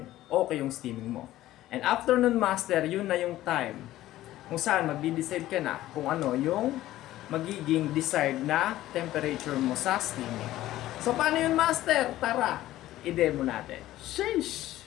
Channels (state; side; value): quieter; right; 14.9 dB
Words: okay yung steaming mo. And after nun, master, yun na yung time kung saan magdi-decide ka na kung ano yung magiging desired na temperature mo sa steaming. So, paano yun, master? Tara, i-demo natin.